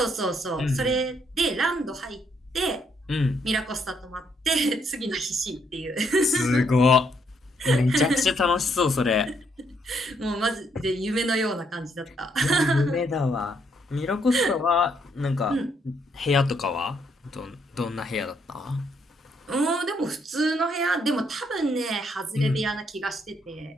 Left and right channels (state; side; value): normal; both; correlation 0.73